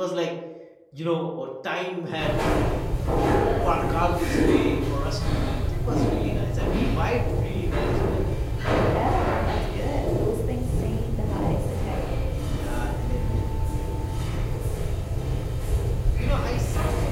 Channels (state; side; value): identical; both; correlation 1.00